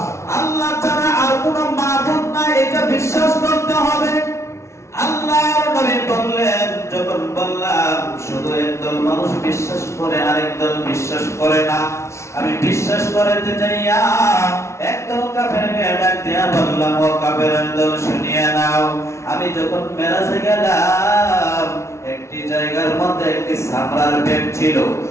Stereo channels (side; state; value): right; late; 0.13 ms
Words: আল্লাহ ছাড়া আর কোনো মাবুদ নাই, এটা বিশ্বাস করতে হবে। আল্লাহর নবী বললেন, যখন বললাম শুধু একদল মানুষ বিশ্বাস করে আরেক দল বিশ্বাস করে না, আমি বিশ্বাস করাতে যাইয়া একদল কাফেরকে ডাক দিয়া বললাম, ও কাফেরের দল শুনিয়া নাও, আমি যখন মেরাজে গেলাম একটি জায়গার মধ্যে একটি সামরার ব্যাগ ছিল,